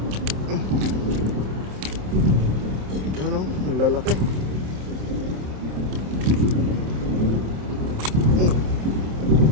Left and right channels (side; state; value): left; late; 27 ms